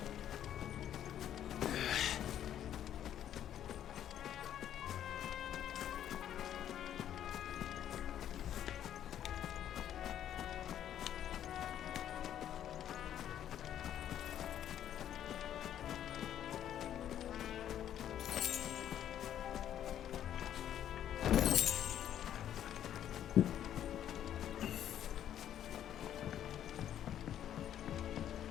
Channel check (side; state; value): right; quieter; 10.6 dB